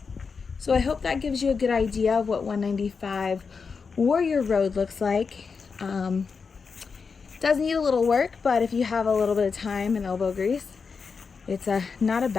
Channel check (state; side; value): quieter; right; 5.3 dB